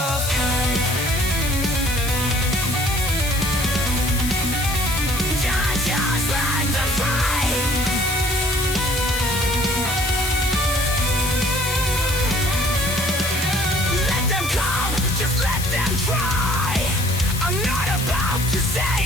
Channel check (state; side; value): noise; left; hiss, 7 dB below the sound